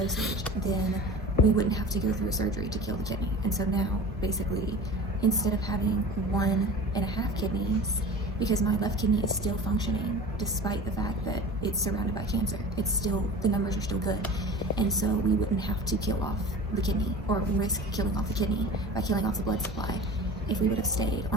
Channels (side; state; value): both; normal; correlation 0.37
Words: then we wouldn't have to go through a surgery to kill the kidney. And so now, basically, instead of having 1.5 kidneys, because my left kidney is still functioning despite the fact that it's surrounded by cancer, it's still, the numbers are still good. And so we wouldn't have to kill off the kidney or risk killing off the kidney by killing off the blood supply if we would have stayed